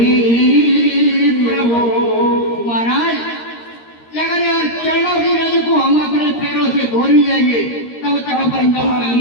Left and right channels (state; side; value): late; right; 13 ms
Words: प्रभु महाराज, अगर यार चरणों की रज को हम अपने पैरों से धो ही लेंगे तब तक अपन